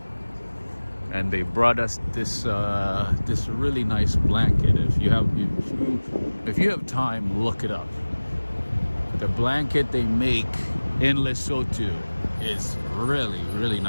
And they brought us this this really nice blanket. If you have time, look it up. The blanket they make in Lesotho is really, really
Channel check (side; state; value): both; inverted; correlation -1.00